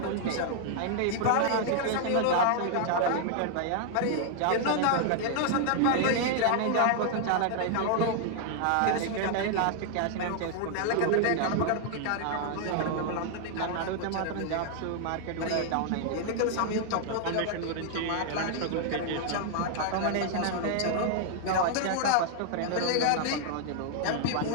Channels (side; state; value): both; different; correlation 0.00